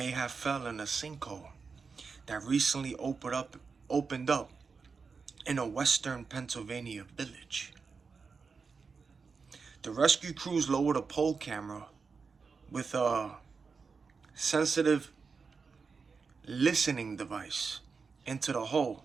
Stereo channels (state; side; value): quieter; left; 5.0 dB